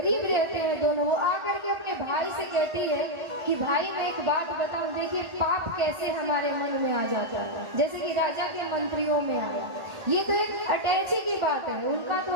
रहते हैं दोनों। वो आकर के अपने भाई से कहती है कि भाई मैं एक बात बताऊं, देखिए पाप कैसे हमारे मन में आ जाता है, जैसे कि राजा के मंत्रियों में आया। ये तो एक अटैची की बात है, उनका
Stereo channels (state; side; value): late; left; 1.4 ms